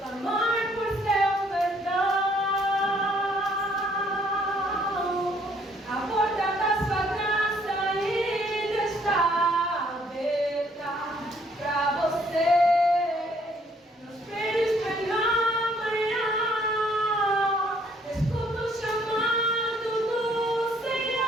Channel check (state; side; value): normal; both; correlation 0.65